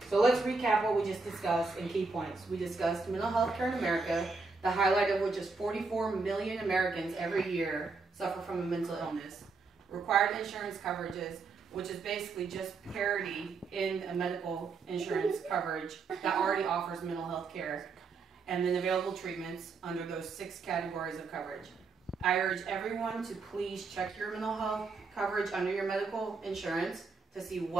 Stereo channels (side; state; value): left; quieter; 4.3 dB